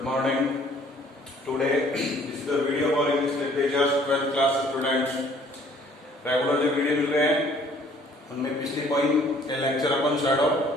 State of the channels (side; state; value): both; normal; correlation 0.58